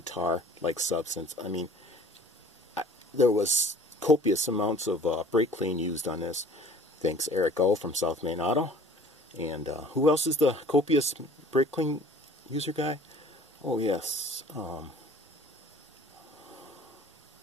substance. I mean, there was copious amounts of brake clean used on this. Thanks Eric O from South Main Auto. And who else is the copious brake clean user guy? Oh yes,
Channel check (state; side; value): normal; both; correlation 0.50